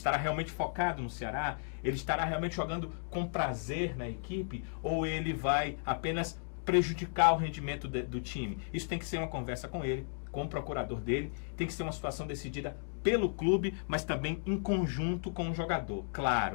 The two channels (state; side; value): silent; right; digital silence